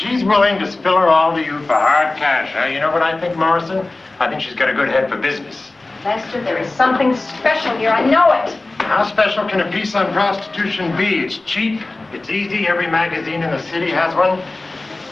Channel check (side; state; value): right; quieter; 3.1 dB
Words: willing to spill her all to you for hard cash, huh? You know what I think, Morrison? I think she's got a good head for business. Lester, there is something special here. I know it. How special can a piece on prostitution be? It's cheap, it's easy, every magazine in the city has one.